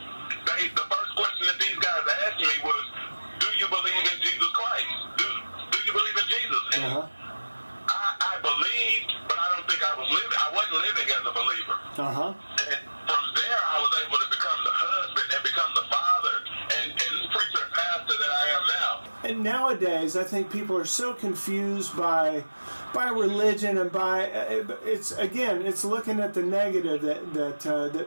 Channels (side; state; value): both; inverted; correlation -1.00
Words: The first question that these guys asked me was, do you believe in Jesus Christ? Do you believe in Jesus? And I believed, but I don't think I was living. I wasn't living as a believer. And from there, I was able to become the husband and become the father and preacher and pastor that I am now. And nowadays, I think people are so confused by religion and it's looking at the negative that